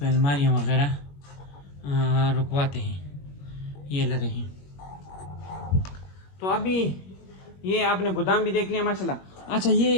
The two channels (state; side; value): late; right; 21 ms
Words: अलमारियाँ वगैरह रुकवाते हैं, ये लरे हैं। तो अभी ये आपने गोदाम भी देख लिया माशाल्लाह। अच्छा